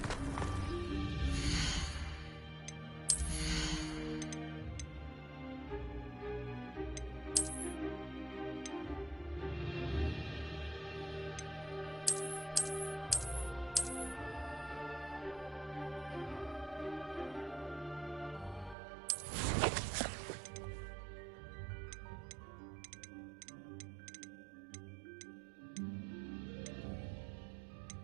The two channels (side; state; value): left; drops out; at 18.8 s